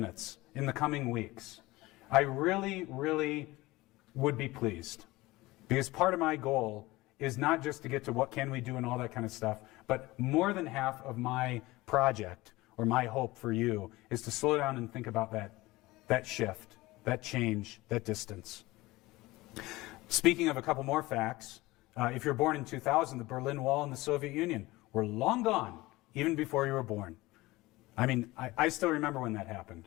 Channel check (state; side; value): quieter; right; 19.9 dB